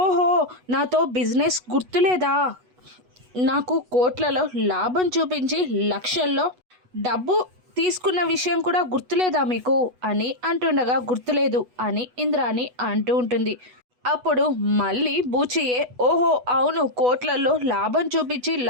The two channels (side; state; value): left; late; 8.1 ms